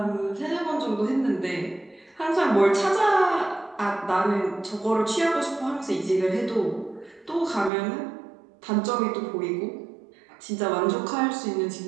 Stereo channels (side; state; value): left; drops out; at 7.7 s